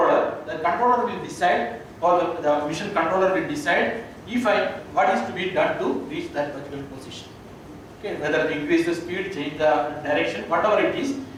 The controller will decide, or the mission controller will decide what is to be done to reach that particular position. Okay, whether to increase the speed, change the direction, whatever it is,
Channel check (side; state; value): both; identical; correlation 1.00